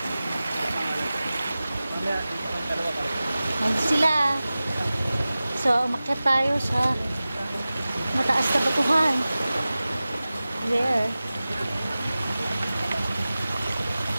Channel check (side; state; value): both; inverted; correlation -0.96